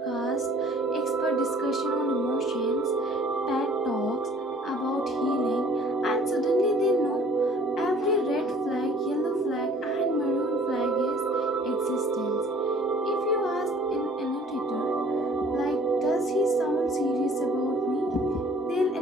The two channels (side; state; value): both; normal; correlation 0.53